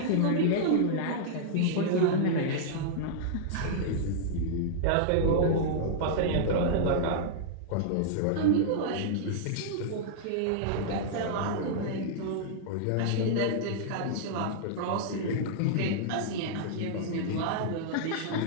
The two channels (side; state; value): both; different; correlation -0.02